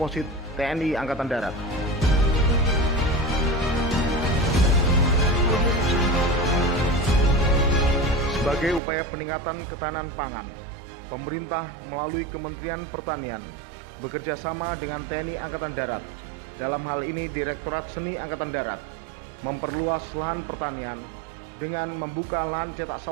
TNI Angkatan Darat. Sebagai upaya peningkatan ketahanan pangan, pemerintah melalui Kementerian Pertanian bekerja sama dengan TNI Angkatan Darat. Dalam hal ini Direktorat Seni Angkatan Darat memperluas lahan pertanian dengan membuka lahan cetak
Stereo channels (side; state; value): left; drops out; at 8.8 s